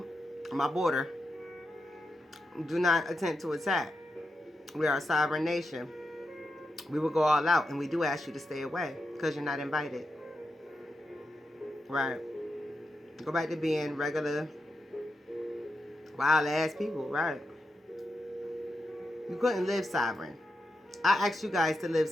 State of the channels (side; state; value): both; normal; correlation 0.87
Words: my border. Do not attempt to attack. We are a sovereign nation. We will go all out, and we do ask you to stay away because you're not invited. Right. Go back to being regular, wild ass people, right? You couldn't live sovereign. I asked you guys to live